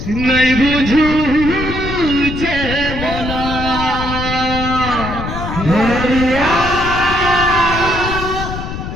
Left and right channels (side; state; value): left; noise; rumble, 6 dB below the sound